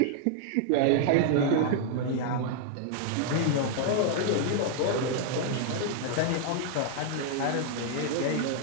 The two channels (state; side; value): different; both; correlation 0.00